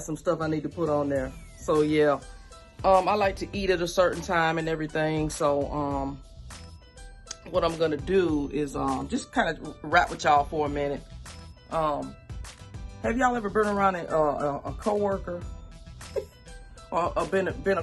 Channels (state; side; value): identical; both; correlation 1.00